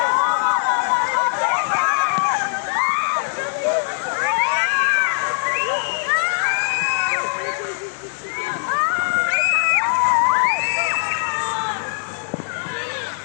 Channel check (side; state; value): right; silent; 61 dB below the other